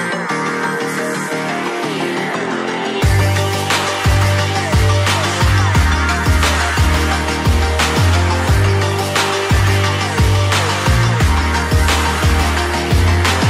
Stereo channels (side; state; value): both; identical; correlation 1.00